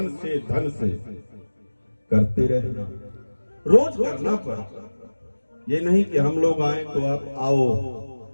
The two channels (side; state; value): both; inverted; correlation -1.00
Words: से, धन से करते रहना, रोज करना पड़ता। ये नहीं कि हम लोग आए तो आप आओ,